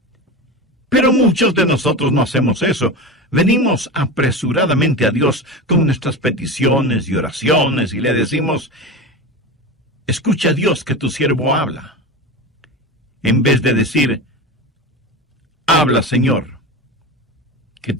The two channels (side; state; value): both; normal; correlation 0.25